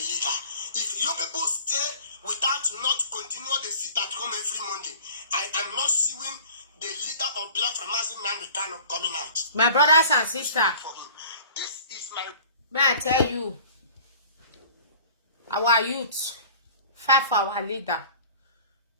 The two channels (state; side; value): inverted; both; correlation -0.45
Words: If you people stay without not continue the sit at home every Monday, I am not seeing the leader of Biafra, Mazi Nnamdi Kanu, coming out. My brothers and sisters, this is my... May I tell you, our youth, fight for our leader.